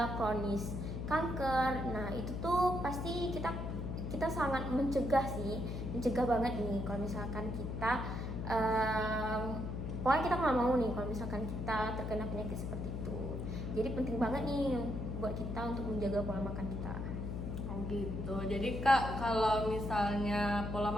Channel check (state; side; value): noise; left; hum, 4 dB below the sound